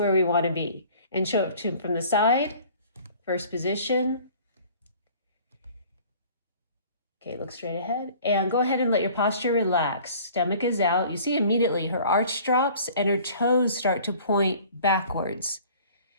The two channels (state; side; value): inverted; both; correlation -0.50